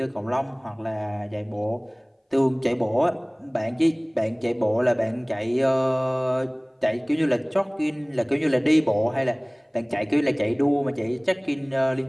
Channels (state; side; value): identical; both; correlation 1.00